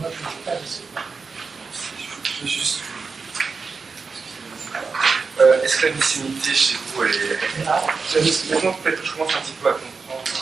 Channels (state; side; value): quieter; left; 4.8 dB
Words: je ne vais pas laisser. Je vais juste. Est-ce que la mycénité chez vous, elle est. Maintenant, peut-être que je commence un petit peu à